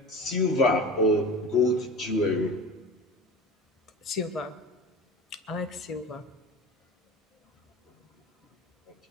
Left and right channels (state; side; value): normal; both; correlation 0.33